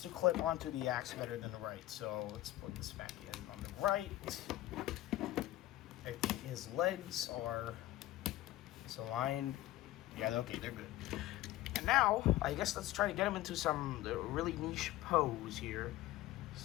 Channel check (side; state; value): right; quieter; 15.8 dB